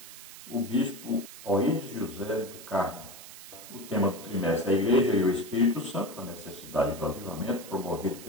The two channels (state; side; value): noise; right; hiss, 15 dB below the sound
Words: o bispo Oíris José do Carmo. O tema do trimestre é a Igreja e o Espírito Santo, a necessidade do avivamento promovido